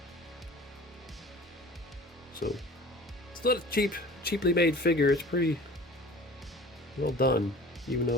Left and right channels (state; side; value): normal; both; correlation 0.43